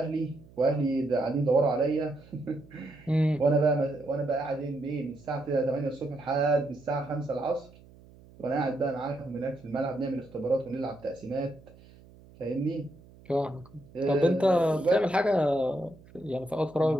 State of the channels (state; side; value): noise; right; hum, 23 dB below the sound